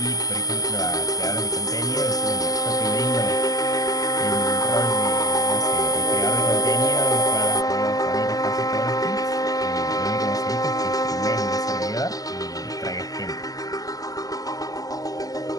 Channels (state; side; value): late; right; 0.17 ms